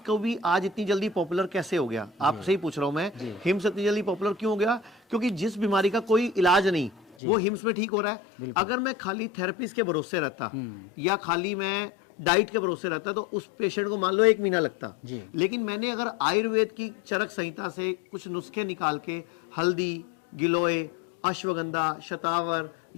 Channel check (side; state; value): right; drops out; at 7.2 s